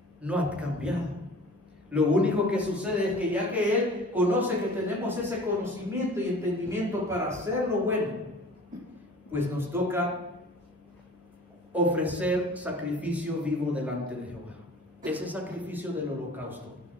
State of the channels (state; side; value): normal; both; correlation 0.44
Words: no ha cambiado. Lo único que sucede es que ya que Él conoce que tenemos ese conocimiento y entendimiento para hacer lo bueno, pues nos toca ofrecer sacrificio vivo delante de Jehová. Ese sacrificio del holocausto,